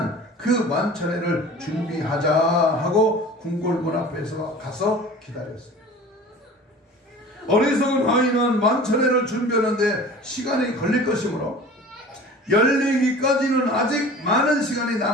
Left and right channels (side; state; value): both; normal; correlation 0.41